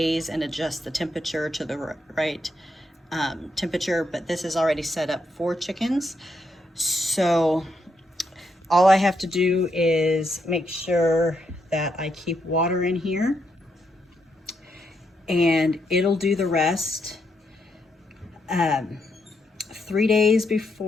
and adjust the temperature to the right temperature, but this is already set up for chickens. So all I have to do is make sure that I keep water in here, and it'll do the rest. 3 days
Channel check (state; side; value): normal; both; correlation 0.79